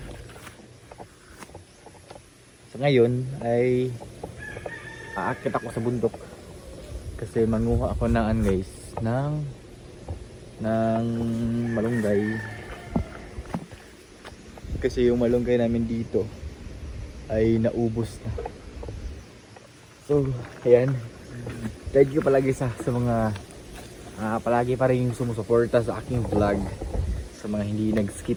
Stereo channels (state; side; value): identical; both; correlation 1.00